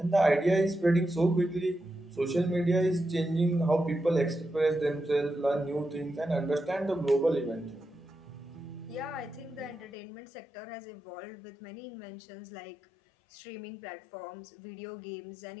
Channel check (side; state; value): right; drops out; at 10.0 s